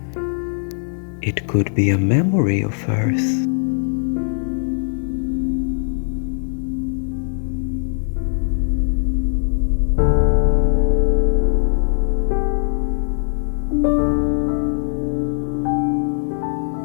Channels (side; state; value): right; silent; digital silence